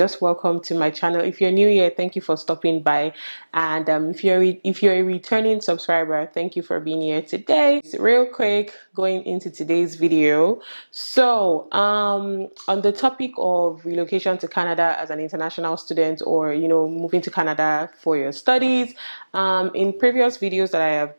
welcome to my channel. If you're new here, thank you for stopping by. And if you're a returning subscriber, thank you for being here today. Real quick, going into today's video. So, on the topic of relocation to Canada as an international student, or moving to Canada for your studies. In previous videos that I have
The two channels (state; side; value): inverted; both; correlation -1.00